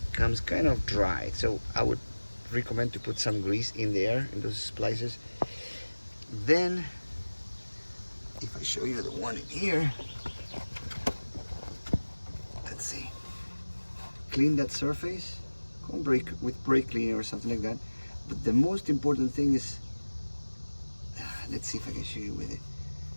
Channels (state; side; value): inverted; both; correlation -1.00